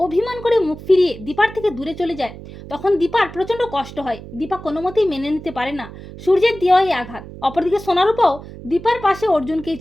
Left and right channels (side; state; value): right; noise; hum, 14 dB below the sound